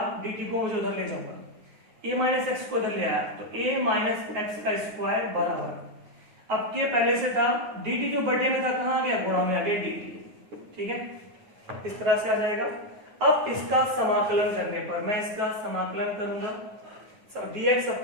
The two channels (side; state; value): left; late; 9.4 ms